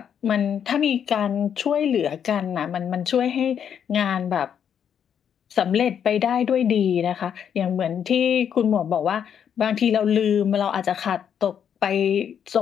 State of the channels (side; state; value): right; quieter; 8.4 dB